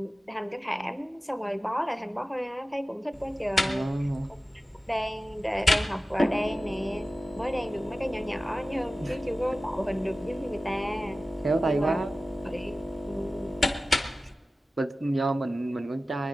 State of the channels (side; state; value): both; normal; correlation 0.95